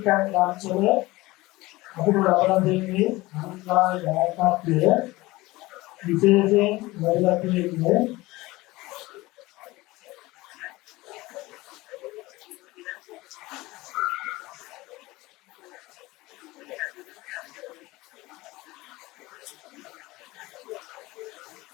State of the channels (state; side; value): quieter; right; 20.2 dB